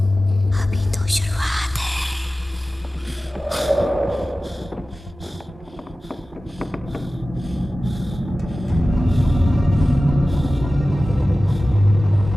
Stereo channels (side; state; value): both; normal; correlation 0.96